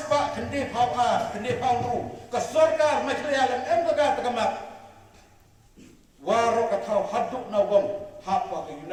pak kendi pau tu. Kesorkar macam alam embaga terkamap. Waro katau haduk nawang hapa ke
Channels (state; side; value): identical; both; correlation 1.00